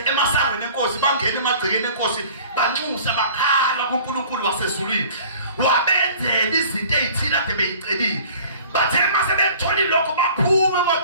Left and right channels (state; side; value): inverted; both; correlation -0.47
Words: emasangweni enkosi bangena emagcekeni enkosi banxusa bakhala kuNkulunkulu wasezulwini. Wabenzela izinto ezithile ade beyicelile. Bathe mase bethola lokho baphuma